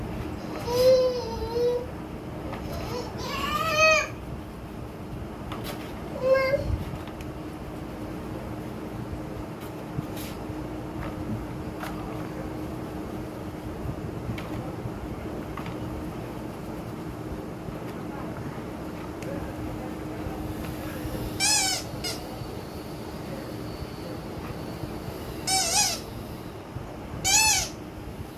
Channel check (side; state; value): both; identical; correlation 1.00